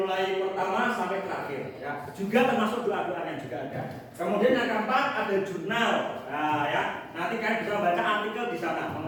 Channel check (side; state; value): both; identical; correlation 1.00